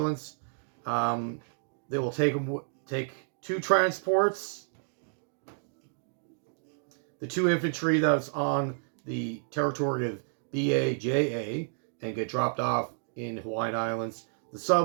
They will take 2 transports, the 2 infantry that's on the territory of BAJA, and get dropped off in Hawaiian Islands. The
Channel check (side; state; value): left; silent; digital silence